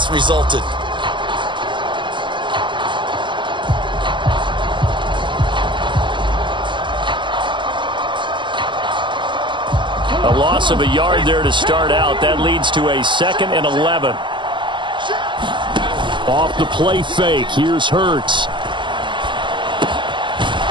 resulted. A loss of a yard there to start out. That leads to a 2nd and 11. Off the play fake. Here's Hurts.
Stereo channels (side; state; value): left; late; 0.23 ms